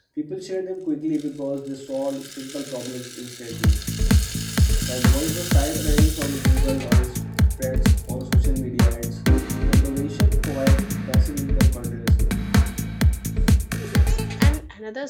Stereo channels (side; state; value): both; identical; correlation 1.00